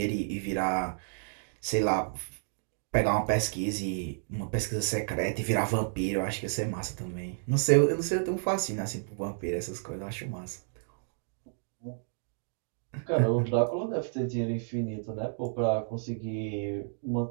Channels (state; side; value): silent; left; digital silence